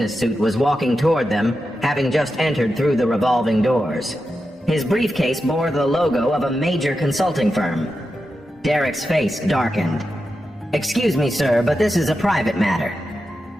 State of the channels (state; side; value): normal; both; correlation 0.89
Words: suit was walking toward them, having just entered through the revolving doors. His briefcase bore the logo of a major consulting firm. Derek's face darkened. Excuse me, sir, but this is a private matter.